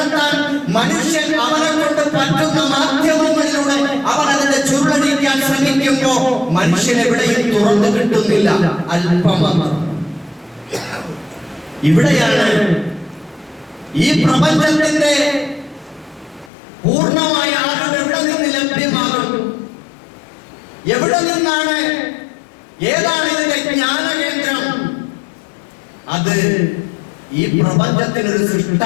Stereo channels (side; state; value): right; drops out; at 16.5 s